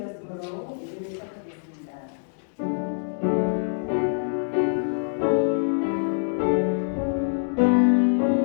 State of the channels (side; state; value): right; silent; digital silence